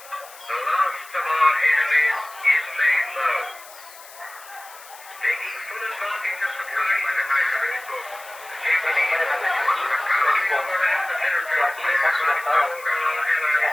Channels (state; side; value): noise; left; hiss, 19 dB below the sound